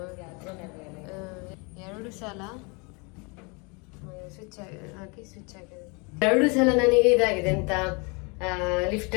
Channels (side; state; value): right; quieter; 30.7 dB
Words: 2 ಸಲ ಸ್ವಿಚ್ ಆಗಿದೆ. 2 ಸಲ ನನಗೆ ಇದಾಗಿದೆ ಅಂತ ಲಿಫ್ಟ್